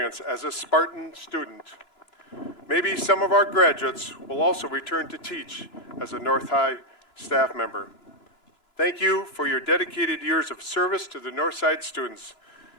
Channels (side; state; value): right; late; 2.9 ms